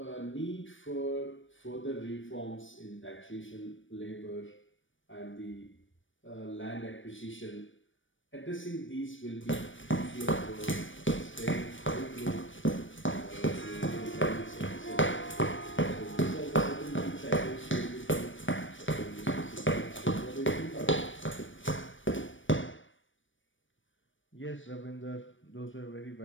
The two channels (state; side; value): late; right; 0.56 ms